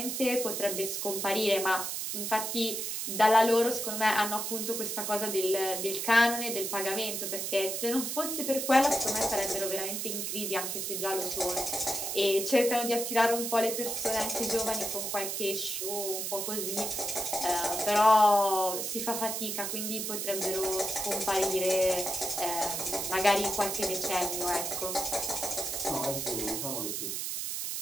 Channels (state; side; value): noise; right; hiss, 3 dB below the sound